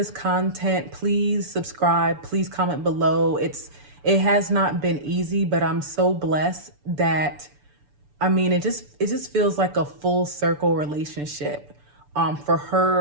content, please subscribe, please comment below. It has not been easy, but I'm so blessed that, I mean, it just feels like a full circle relationship for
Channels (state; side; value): late; left; 6.9 ms